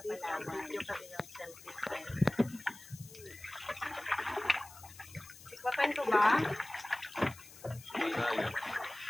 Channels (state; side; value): noise; left; hiss, 18 dB below the sound